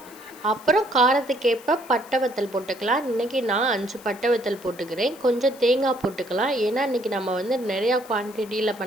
அப்புறம் காரத்துக்கேற்ப பட்டை வத்தல் போட்டுக்கலாம். இன்றைக்கி நான் 5 பட்டை வத்தல் போட்டுக்கிறேன். கொஞ்சம் தேங்காய் போட்டுக்கலாம். ஏன்னா இன்றைக்கி நம்ம நிறையா குவான்டிட்டியில்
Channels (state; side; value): noise; left; hiss, 22 dB below the sound